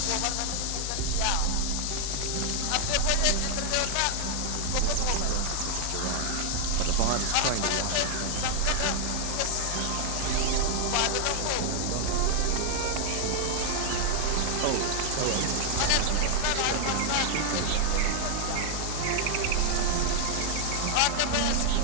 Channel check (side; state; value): both; different; correlation 0.00